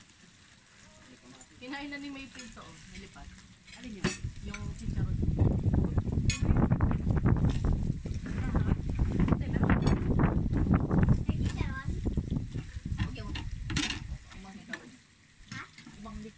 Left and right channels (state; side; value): identical; both; correlation 1.00